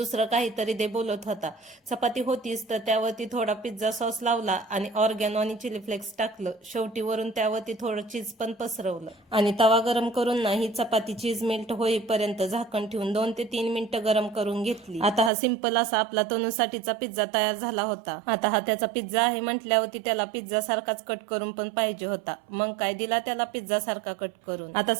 काहीतरी दे बोलत होता. चपाती होतीच तर त्यावरती थोडा पिझ्झा सॉस लावला आणि ऑर्गॅनो आणि चिली फ्लेक्स टाकलं. शेवटी वरून त्यावरती थोडं चीज पण पसरवलं आणि तवा गरम करून ना ही चपाती चीज मेल्ट होईपर्यंत झाकण ठेवून 2 ते 3 मिनिटं गरम करून घेतली. आता हा सिंपल असा आपला तनुसाठीचा पिझ्झा तयार झाला होता. आता हा त्याचा पिझ्झा आहे म्हटल्यावरती त्याला पिझ्झा सारखाच कट करून पण पाहिजे होता. मग काय दिला त्याला पिझ्झा सारखा कट करून. आता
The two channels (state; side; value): drops out; left; at 15.3 s